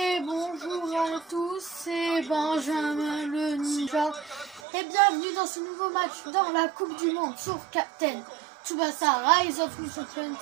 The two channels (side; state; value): left; drops out; at 4.6 s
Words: bonjour à tous, c'est Benjamin le Ninja et bienvenue dans ce nouveau match dans la Coupe du Monde sur Captain Tsubasa Rise of New Champions.